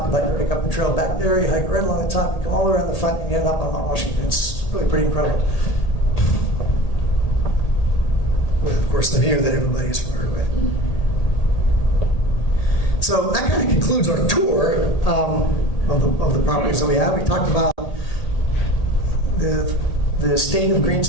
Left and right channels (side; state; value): right; late; 1.8 ms